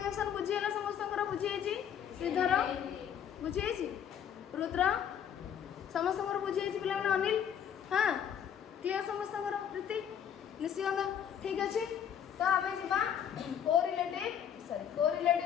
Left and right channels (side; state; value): right; quieter; 8.8 dB